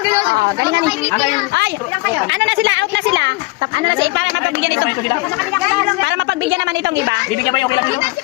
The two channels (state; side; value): quieter; right; 22.7 dB